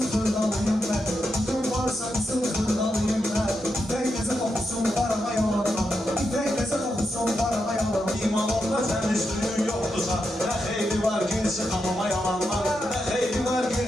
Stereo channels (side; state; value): both; normal; correlation 0.85